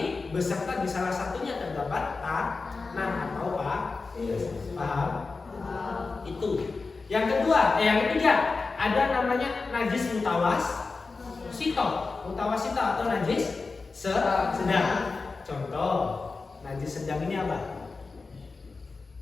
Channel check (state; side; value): quieter; right; 4.1 dB